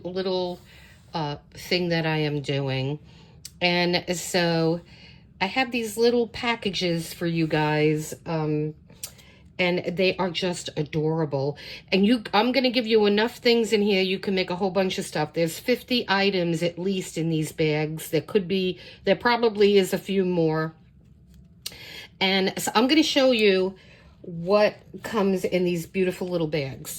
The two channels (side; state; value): both; identical; correlation 1.00